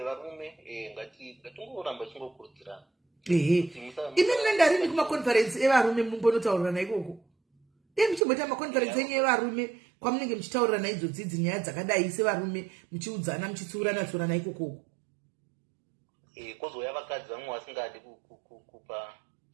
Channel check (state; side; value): drops out; left; at 8.2 s